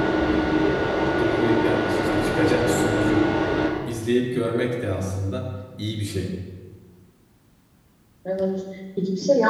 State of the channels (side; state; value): both; identical; correlation 1.00